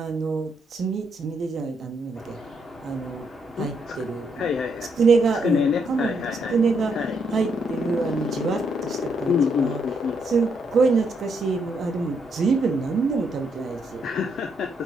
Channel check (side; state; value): both; normal; correlation 0.76